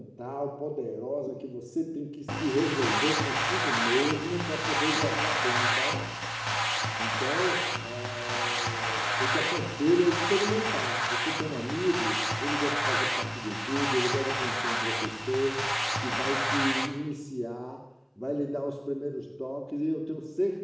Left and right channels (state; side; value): identical; both; correlation 1.00